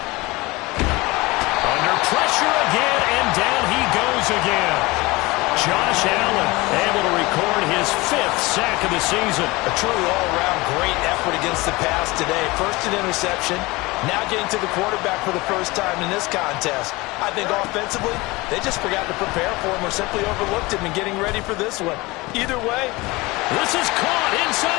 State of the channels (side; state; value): right; quieter; 22.5 dB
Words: Under pressure again, and down he goes again. Josh Allen able to record his 5th sack of the season. A truly all-around great effort against the pass today. First an interception, now getting to the quarterback for the first time in this contest. I think offensively, they just forgot to prepare for him or simply overlooked him in getting ready for this one. Either way, this is caught